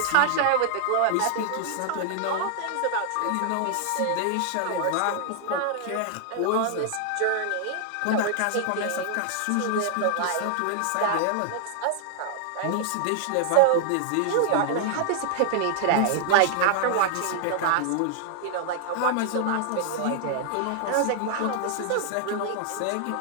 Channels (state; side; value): different; both; correlation -0.01